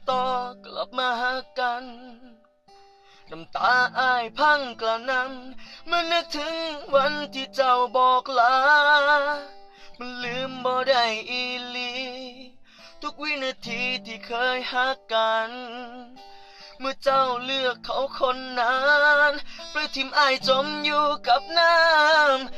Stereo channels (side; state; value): both; identical; correlation 1.00